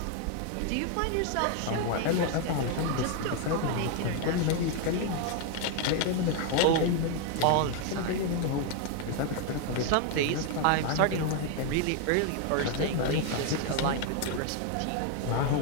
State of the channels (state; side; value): different; both; correlation 0.00